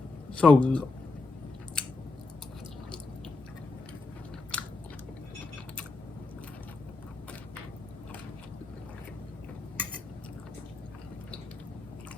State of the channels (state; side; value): quieter; right; 3.6 dB